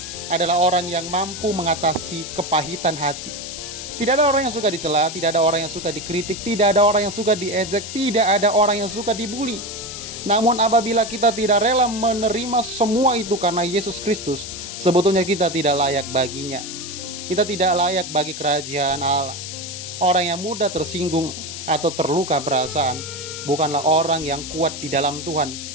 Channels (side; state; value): left; noise; hiss, 8 dB below the sound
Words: adalah orang yang mampu mengatasi kepahitan hati. Tidak ada orang yang suka dicela, tidak ada orang yang suka dikritik, tidak ada orang yang suka diejek, tidak ada orang yang suka dibully. Namun apabila kita tidak rela menerima semua itu karena Yesus Kristus, sebetulnya kita tidak layak baginya. Kita tidak layak bagi kerajaan Allah. Orang yang mudah tersinggung atau terluka perasaan bukanlah orang yang kuat di dalam Tuhan.